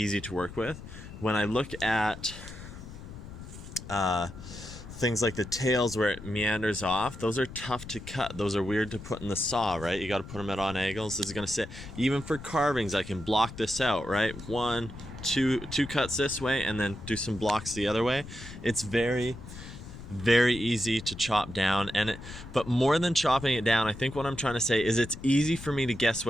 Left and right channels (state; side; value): noise; left; rumble, 13 dB below the sound